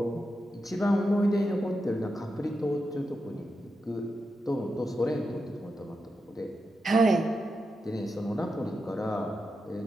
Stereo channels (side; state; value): both; normal; correlation 0.88